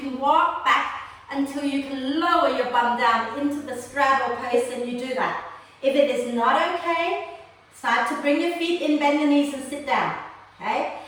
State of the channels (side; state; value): both; identical; correlation 1.00